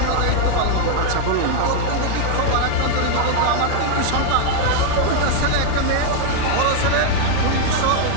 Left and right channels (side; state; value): both; different; correlation 0.00